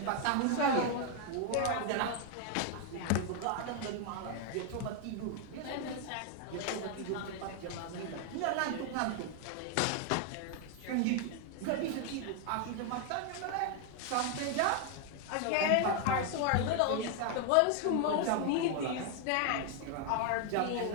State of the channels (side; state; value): both; different; correlation 0.00